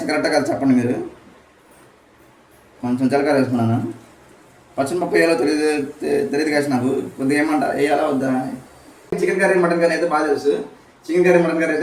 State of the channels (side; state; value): both; identical; correlation 1.00